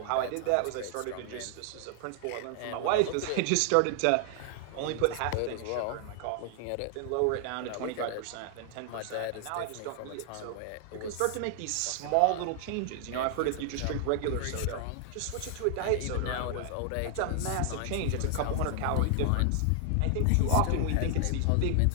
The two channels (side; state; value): both; different; correlation 0.00